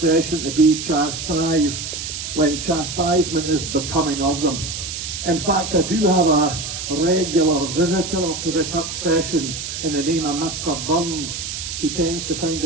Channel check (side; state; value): right; noise; hiss, 6 dB below the sound